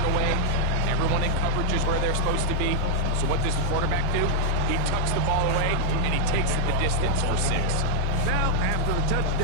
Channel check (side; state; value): both; different; correlation -0.01